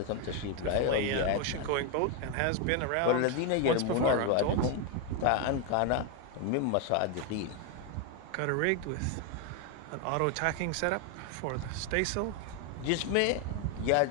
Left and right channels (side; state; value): both; different; correlation 0.01